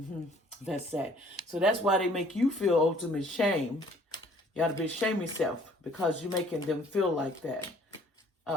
That's sad. So that's why they make you feel ultimate shame. You ought to be ashamed of yourself because you're making them feel like that.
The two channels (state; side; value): normal; both; correlation 0.57